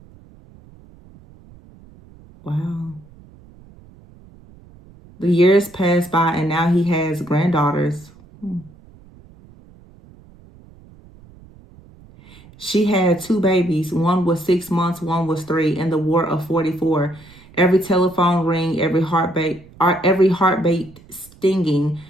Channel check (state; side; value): noise; right; rumble, 24 dB below the sound